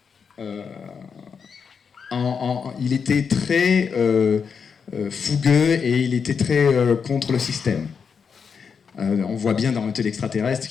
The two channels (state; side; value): quieter; right; 6.2 dB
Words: il était très fougueux et il était très contre le système. On voit bien dans Hôtel extraterrestre